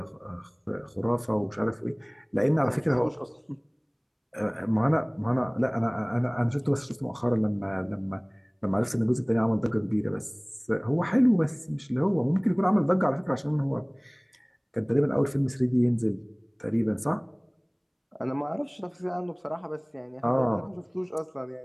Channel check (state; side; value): identical; both; correlation 1.00